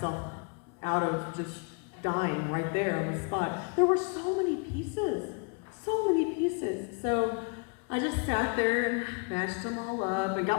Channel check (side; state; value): right; quieter; 34.5 dB